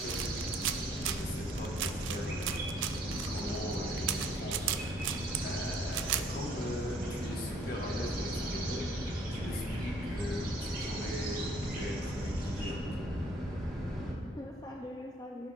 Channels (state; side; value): normal; both; correlation 0.61